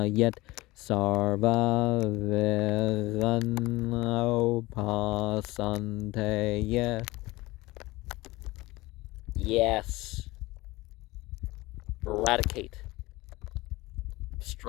Sarva Veganopasanteya. Yes. Eradicate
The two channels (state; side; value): quieter; right; 20.4 dB